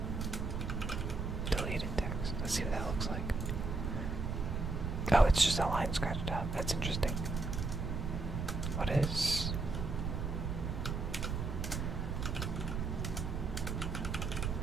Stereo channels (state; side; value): noise; right; rumble, 2 dB below the sound